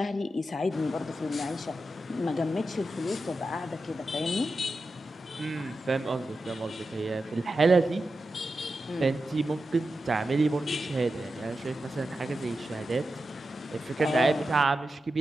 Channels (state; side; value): normal; both; correlation 0.91